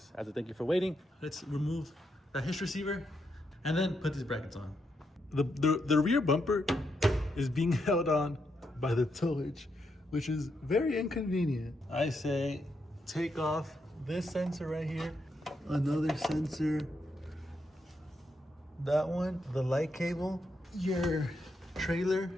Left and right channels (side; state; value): both; normal; correlation 0.81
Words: as a thank you for waiting. Let's remove the Hitch receiver and then put these brackets on. The rear bumper is being held on by the tow hitch, which is very inconvenient. I say take off this sensor right here, another sensor, that one, the light cable, your trailer